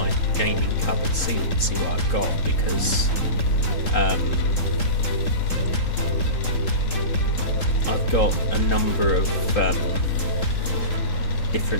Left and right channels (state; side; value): late; right; 3.8 ms